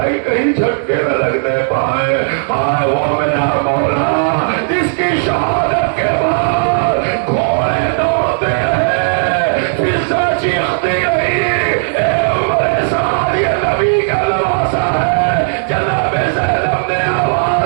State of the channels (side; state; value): left; silent; digital silence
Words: کہیں جھٹکے نہ لگنے پائے. ہائے وہ میرا مولا جس کی شہادت کے بعد گھوڑے دوڑتے ہیں، فضا چیختی رہی، اے عمر سار یہ نبی کا لباسا ہے. جناب زینب نے